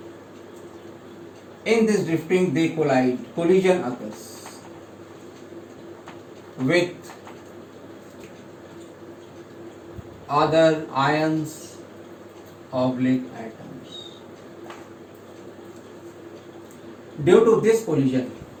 In this drifting, they collide. Collision occurs with other ions oblique atoms. Due to this collision,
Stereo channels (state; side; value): identical; both; correlation 1.00